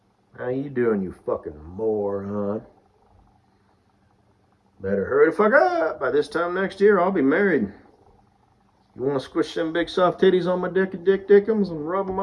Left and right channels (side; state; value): both; identical; correlation 1.00